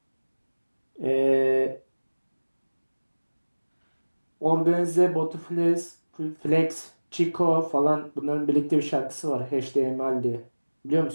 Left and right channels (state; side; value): inverted; both; correlation -1.00